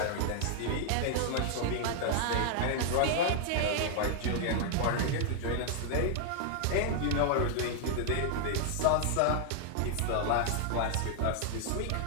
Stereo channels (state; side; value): different; both; correlation 0.00